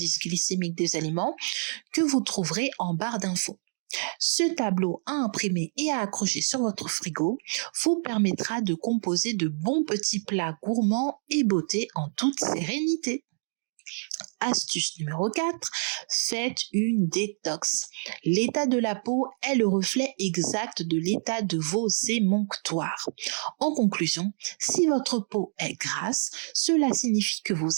glycémiques des aliments que vous trouverez en barre d'infos. Ce tableau à imprimer et à accrocher sur votre frigo vous permettra de composer de bons petits plats gourmands et beauté en toute sérénité. Astuce numéro 4, faites une détox. L'état de la peau est le reflet exact de l'état de vos émonctoires. En conclusion, si votre peau est grasse, cela signifie que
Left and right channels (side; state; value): left; silent; digital silence